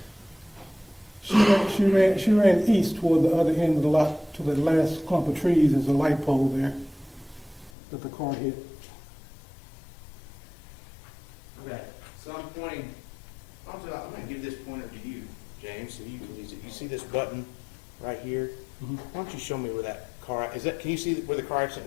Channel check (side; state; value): right; drops out; at 7.7 s